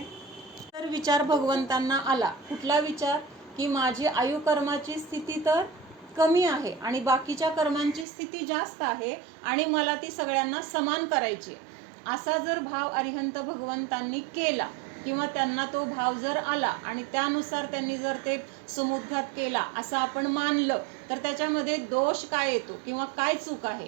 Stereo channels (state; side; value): drops out; left; at 8.1 s